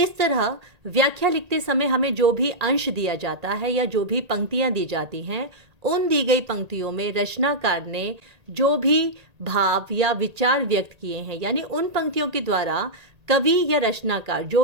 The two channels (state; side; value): late; left; 1.8 ms